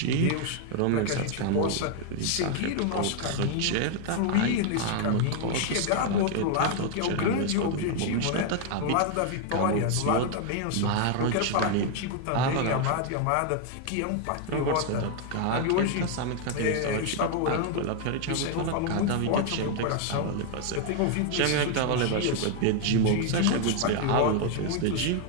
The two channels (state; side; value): different; both; correlation 0.00